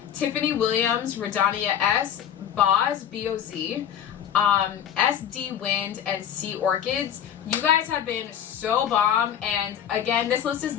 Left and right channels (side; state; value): right; quieter; 9.5 dB